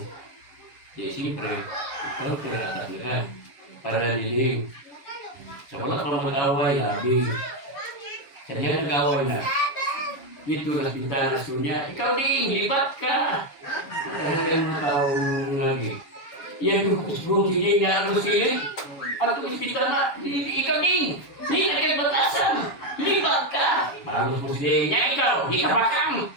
di siyempre, ikaw tiratas na ka. Para niling. So wala pa mag-away na, sa diyan nag-away na. Dito na bintana niya, ikaw din, libat ka. Ano taong lagi. Yan yung kusbong sige nga ang silid. Ang ospital na, ikaw din. Hindi na kayo batasan. Libat ka. Bagus mo siya niya ikaw. Hindi ka bakang.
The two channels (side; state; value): right; late; 7.2 ms